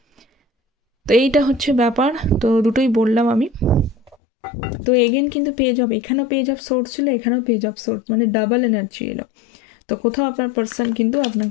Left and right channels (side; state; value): right; drops out; at 4.2 s